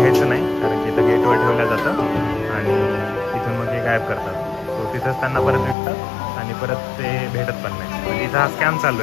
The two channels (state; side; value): drops out; right; at 5.8 s